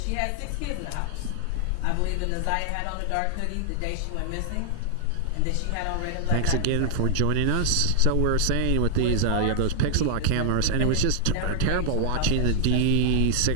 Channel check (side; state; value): both; different; correlation -0.01